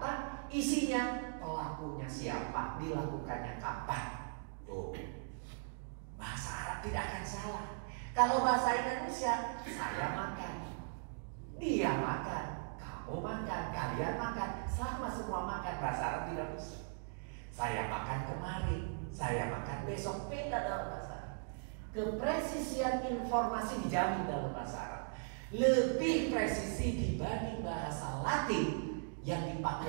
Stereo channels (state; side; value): silent; left; digital silence